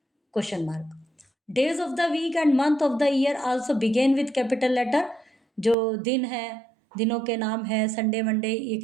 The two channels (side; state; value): left; drops out; at 5.8 s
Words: Question mark. Days of the week and month of the year also begin with capital letter. जो दिन है, दिनों के नाम है, संडे मंडे, ये